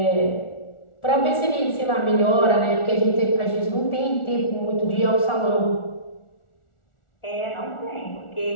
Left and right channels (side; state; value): right; late; 1.4 ms